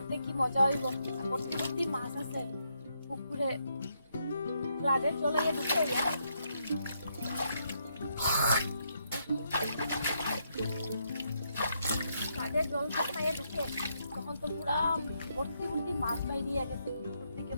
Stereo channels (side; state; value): both; inverted; correlation -0.77